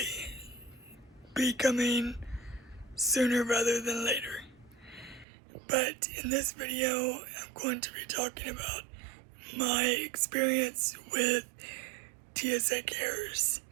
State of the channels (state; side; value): drops out; left; at 5.2 s